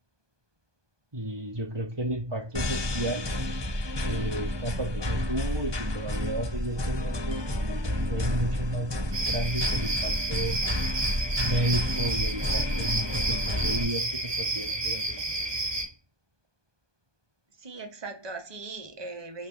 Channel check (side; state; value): left; late; 1.2 ms